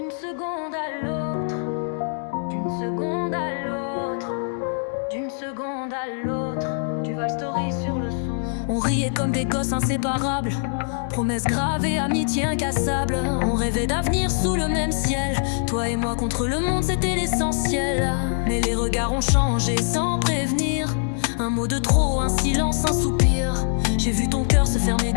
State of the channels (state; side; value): silent; right; 63 dB below the other